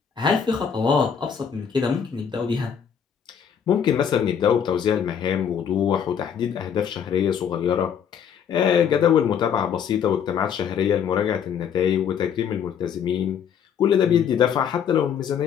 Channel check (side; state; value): right; quieter; 7.8 dB